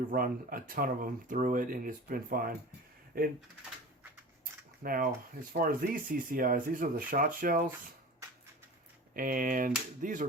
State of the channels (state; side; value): normal; both; correlation 0.36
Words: run a ton of them through it, and it's been fine. Now, as far as these CCIs, these are the shot shells. And these